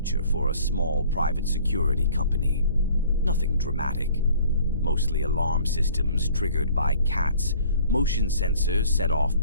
for a small private security company. Nothing dramatic. Mostly alarm systems triggered by cats, motion sensors set off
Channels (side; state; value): both; inverted; correlation -0.53